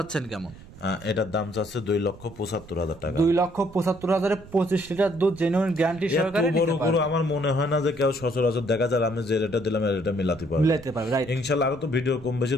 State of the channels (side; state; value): right; noise; rumble, 19 dB below the sound